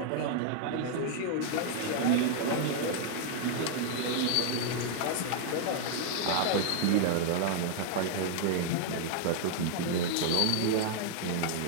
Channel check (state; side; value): different; both; correlation 0.00